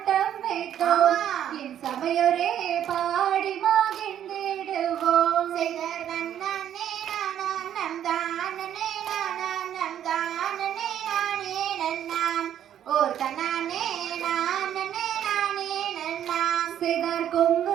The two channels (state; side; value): quieter; left; 10.4 dB